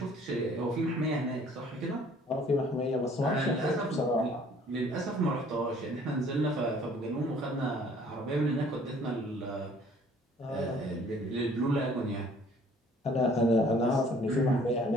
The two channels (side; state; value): both; normal; correlation 0.56